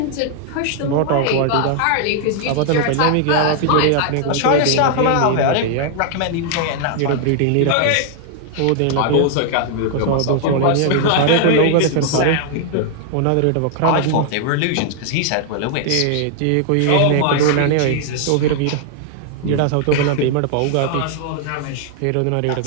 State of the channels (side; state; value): both; different; correlation 0.00